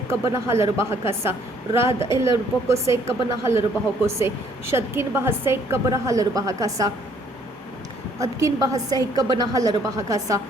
कबर हलर बहकसा राद एलर बको से कबर हलर बाहो को से शदकिन बहसे कबर हलर बहकसा अदकिन बहसे कबना हलर बहकसा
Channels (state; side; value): normal; both; correlation 0.63